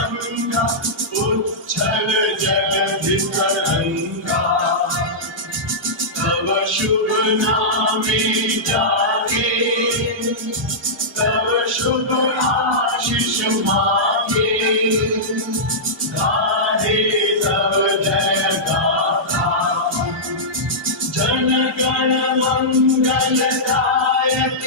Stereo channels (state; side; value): normal; both; correlation -0.13